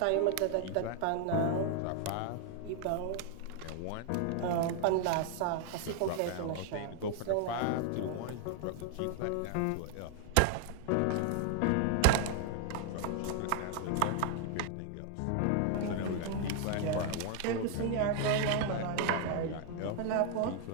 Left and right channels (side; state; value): both; different; correlation 0.00